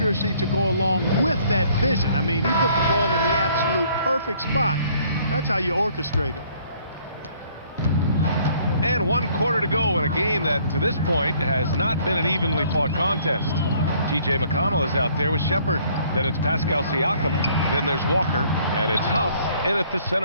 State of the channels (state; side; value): inverted; both; correlation -0.61